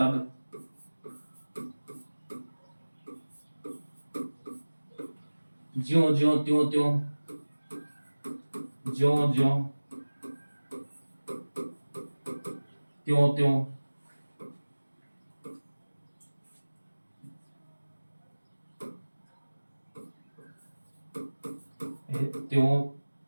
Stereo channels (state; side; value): inverted; both; correlation -1.00